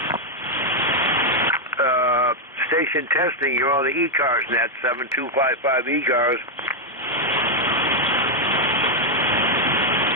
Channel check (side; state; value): both; normal; correlation 0.00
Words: Station testing, you're on the ECARS net, 7255 ECARS.